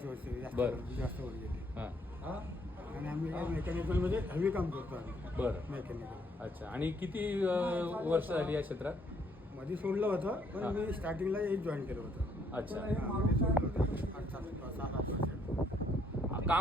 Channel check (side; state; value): both; normal; correlation 0.69